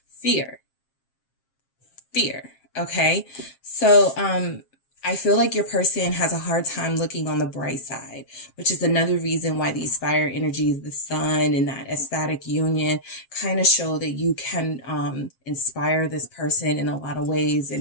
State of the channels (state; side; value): late; right; 7.4 ms